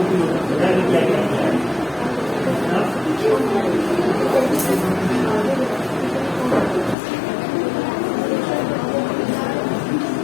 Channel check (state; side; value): drops out; right; at 7.0 s